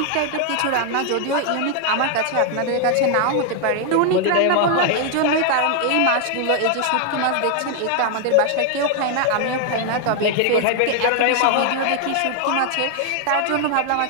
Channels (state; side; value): different; both; correlation 0.00